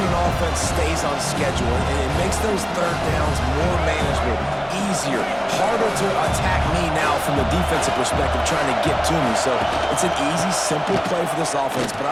an offense stays on schedule, and it makes those third downs more manageable, easier, harder to attack me now from the defensive perspective trying to get to me. So it's an easy, simple play for this offense, but I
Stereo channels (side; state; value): both; identical; correlation 1.00